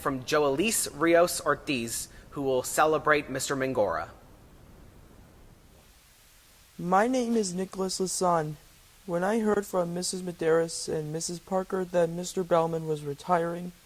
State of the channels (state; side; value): identical; both; correlation 1.00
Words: Joelise Rios Ortiz, who will celebrate Mr. Mangora. My name is Nicholas Lasan. When I heard from Mrs. Medeiros and Mrs. Parker that Mr. Bellman was retiring,